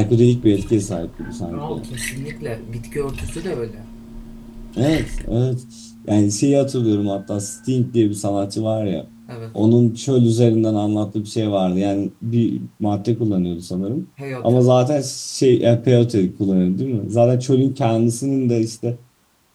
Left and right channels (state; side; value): identical; both; correlation 1.00